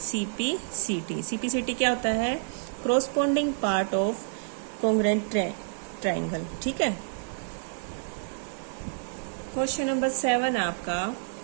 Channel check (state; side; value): silent; left; digital silence